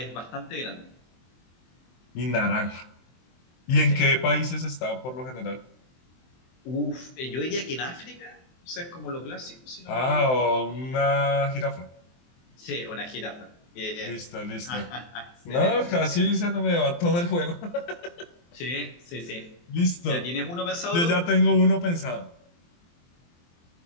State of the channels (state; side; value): late; right; 23 ms